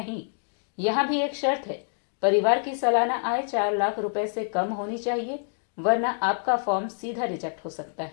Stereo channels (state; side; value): silent; right; digital silence